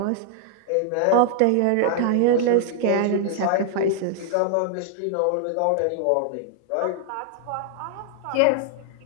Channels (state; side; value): different; both; correlation 0.00